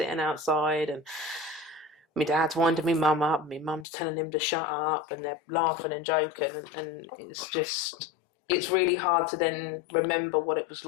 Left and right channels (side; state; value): right; drops out; at 3.9 s